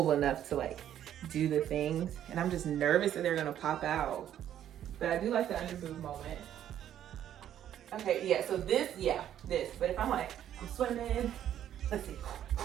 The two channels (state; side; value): quieter; left; 10.8 dB